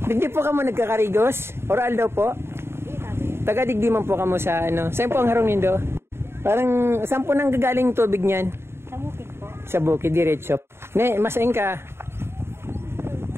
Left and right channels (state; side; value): late; left; 0.12 ms